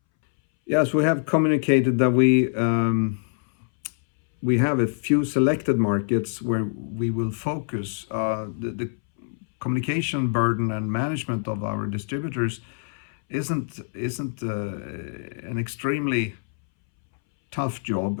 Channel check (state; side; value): silent; right; 62 dB below the other